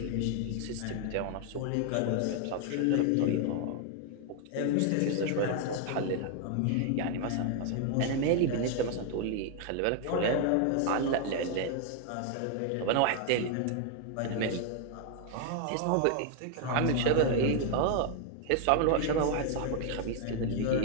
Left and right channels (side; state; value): both; different; correlation 0.00